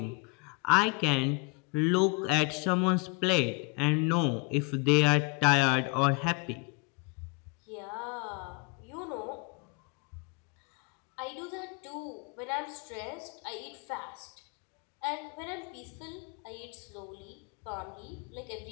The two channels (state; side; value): quieter; right; 31.7 dB